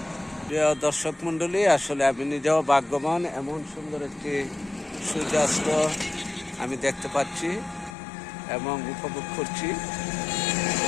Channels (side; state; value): right; drops out; at 8.0 s